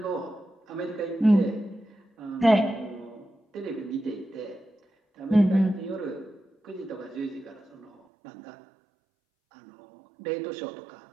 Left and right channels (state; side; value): drops out; left; at 8.0 s